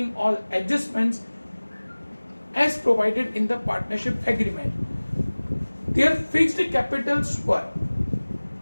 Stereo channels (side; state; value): both; inverted; correlation -1.00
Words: all adjustments as provided in the partnership agreement. Their fixed capitals were,